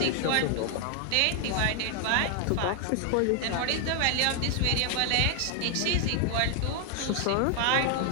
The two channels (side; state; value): both; different; correlation 0.00